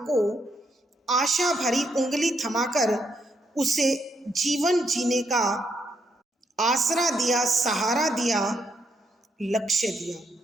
को आशा भरी उंगली थमाकर उसे जीवन जीने का आसरा दिया, सहारा दिया, लक्ष्य दिया।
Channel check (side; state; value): both; normal; correlation 0.77